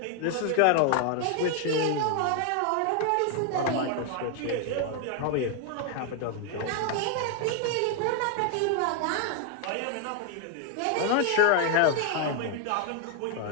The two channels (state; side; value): different; both; correlation 0.00